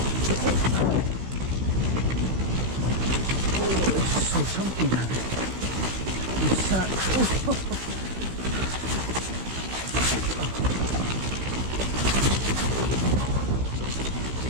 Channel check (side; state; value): left; late; 16 ms